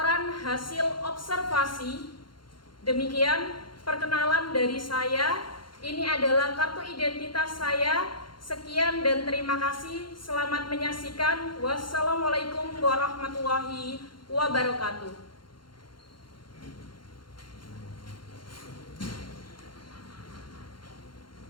hasil observasi. Demikian perkenalan dari saya. Ini adalah kartu identitas saya. Sekian dan terima kasih. Selamat menyaksikan. Wassalamualaikum warahmatullahi wabarakatuh.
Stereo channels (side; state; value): right; late; 0.72 ms